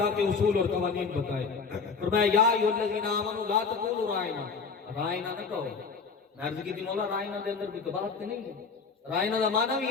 کے اصول اور قوانین بتائے۔ فرمایا یا ایھا الذین آمنوا لا تقولوا رائنا، رائنا نہ کہو۔ میں عرض کی تھی مولا رائنا دے اندر بھی کباہت نہیں ہے، رائنا دا معنی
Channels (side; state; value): right; quieter; 5.2 dB